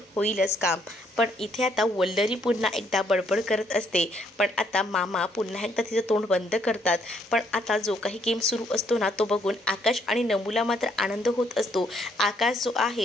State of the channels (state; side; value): normal; both; correlation 0.70